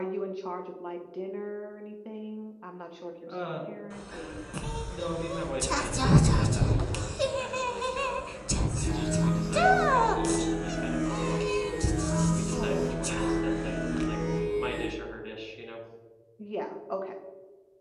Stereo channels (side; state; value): both; identical; correlation 1.00